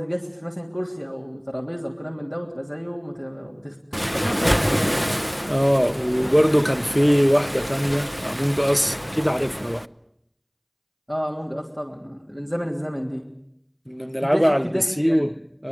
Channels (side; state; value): both; identical; correlation 1.00